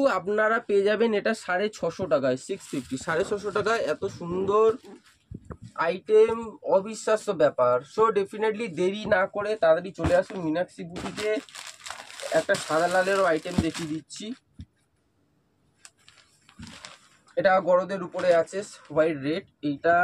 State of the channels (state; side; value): identical; both; correlation 1.00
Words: আপনারা পেয়ে যাবেন এটা 650 টাকায়, 650, 650 টাকায় এত সুন্দর আইটেম, অবিশ্বাস্য ব্যাপার। সো ডেফিনেটলি দেরি না করে তাড়াতাড়ি চলে আসুন মীনাক্ষী বুটিকে। একটা সাদা লালেরও আইটেম দেখিয়ে দিচ্ছি, এটা গরদের উপরে আছে, হোয়াইট রেড,